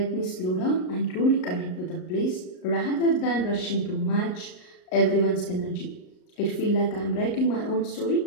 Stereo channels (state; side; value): late; right; 38 ms